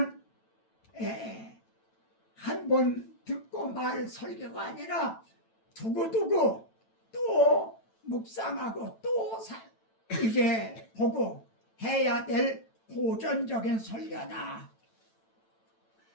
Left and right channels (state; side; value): late; right; 9.1 ms